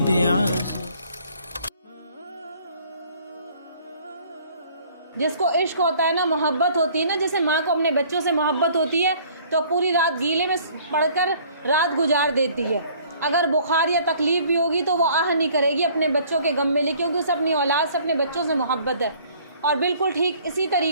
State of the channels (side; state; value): both; inverted; correlation -0.56